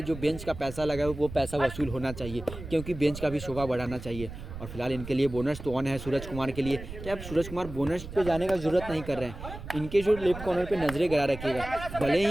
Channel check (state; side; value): noise; right; rumble, 11 dB below the sound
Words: जो बेंच का पैसा लगा है वो पैसा वसूल होना चाहिए, क्योंकि बेंच का भी शोभा बढ़ाना चाहिए। और फिलहाल इनके लिए बोनस तो ऑन है सूरज कुमार के लिए। क्या अब सूरज कुमार बोनस पे जाने का ज़रूरत नहीं कर रहे हैं, इनके जो लेफ्ट कॉर्नर पे नजरें गड़ा रखिएगा। भले